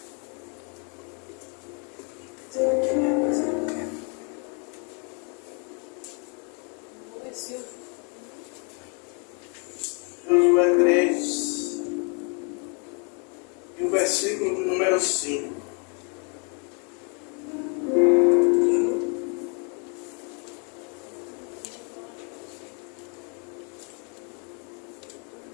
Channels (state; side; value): quieter; right; 37.1 dB